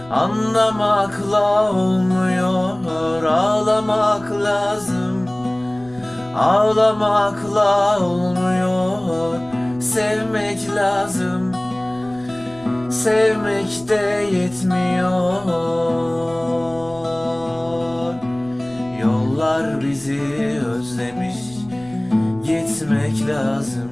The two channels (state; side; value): noise; left; rumble, 23 dB below the sound